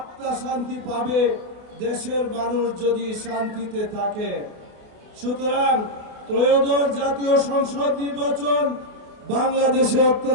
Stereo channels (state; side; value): late; left; 28 ms